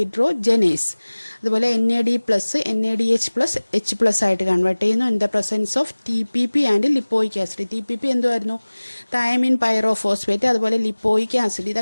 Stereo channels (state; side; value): inverted; both; correlation -1.00